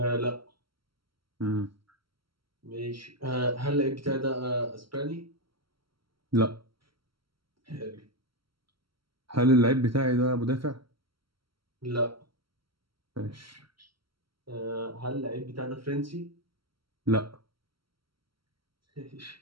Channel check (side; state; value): left; late; 0.74 ms